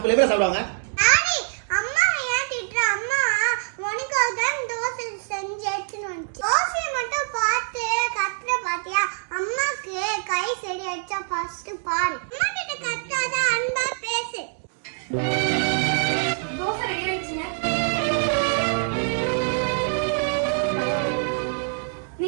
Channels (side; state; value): left; silent; 62 dB below the other